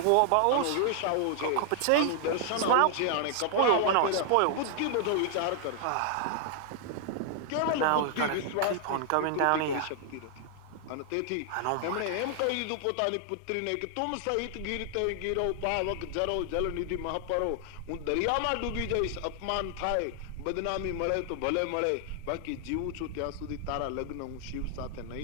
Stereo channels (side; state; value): both; different; correlation 0.00